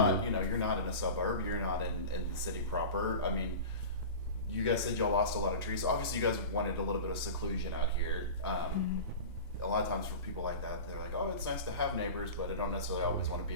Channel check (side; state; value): both; inverted; correlation -0.32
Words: you're not in a suburb. You're not in the city proper. You guys said y'all lost a lot of trees. So obviously, you guys wanted a little bit of seclusion out here. A lot of times for people like that, they're like, oh, it's nice to have neighbors, but I don't necessarily always want to